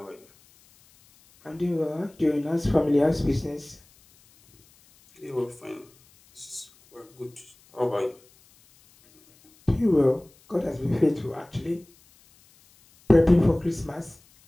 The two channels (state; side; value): noise; left; hiss, 30 dB below the sound